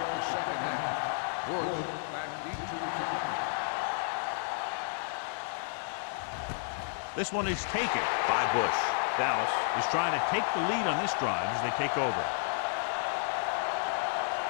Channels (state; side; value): silent; right; 57 dB below the other